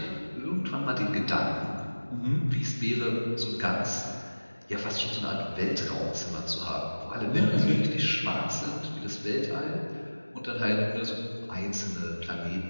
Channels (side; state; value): both; inverted; correlation -1.00